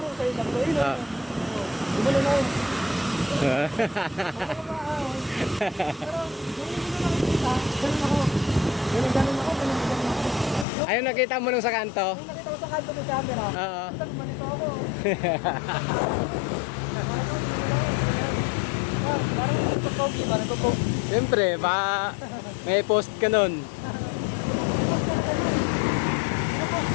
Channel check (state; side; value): drops out; right; at 10.7 s